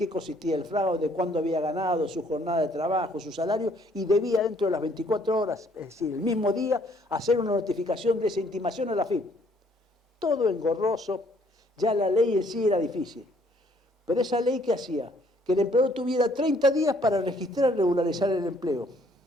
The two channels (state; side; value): normal; both; correlation 0.63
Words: consistía el fraude, cuándo había ganado, su jornada de trabajo, su salario, y debía dentro de las 24 horas, es decir, el mismo día, hacer una notificación de esa intimación a la FIP. Todo engorroso, ya la ley en sí era difícil. Pero esa ley, ¿qué hacía? Que el empleador tuviera 30 días para registrar y regularizar el empleo.